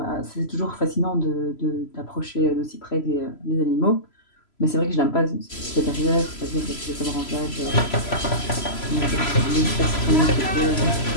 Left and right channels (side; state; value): right; late; 3.0 ms